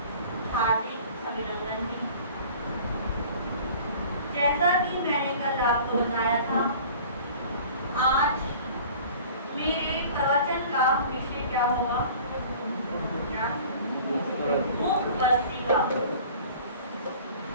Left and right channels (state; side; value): inverted; both; correlation -0.45